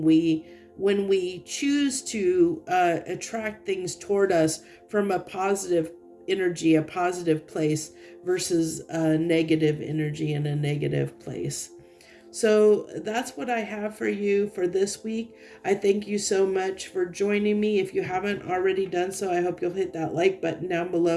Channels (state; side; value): identical; both; correlation 1.00